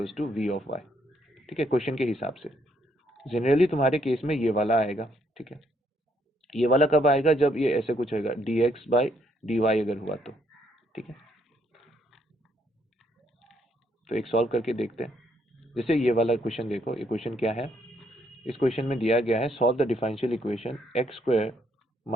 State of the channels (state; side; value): normal; both; correlation 0.72